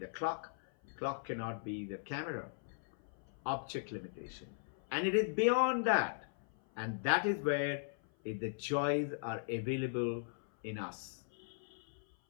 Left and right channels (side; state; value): right; silent; 52 dB below the other